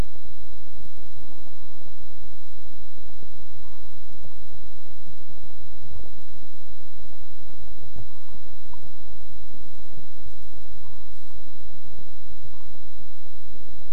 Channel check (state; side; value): identical; both; correlation 1.00